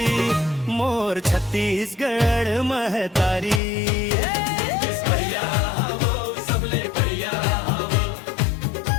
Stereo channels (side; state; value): right; drops out; at 3.6 s